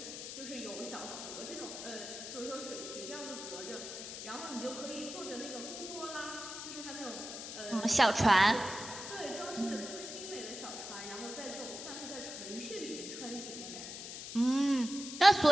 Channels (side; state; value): left; noise; hiss, 8 dB below the sound